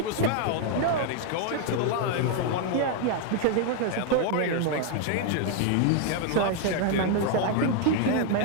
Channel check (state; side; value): different; both; correlation 0.00